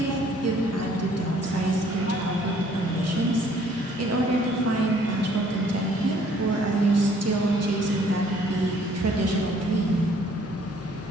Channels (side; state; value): both; normal; correlation 0.60